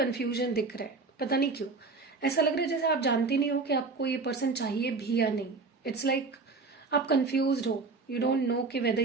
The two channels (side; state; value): left; quieter; 4.1 dB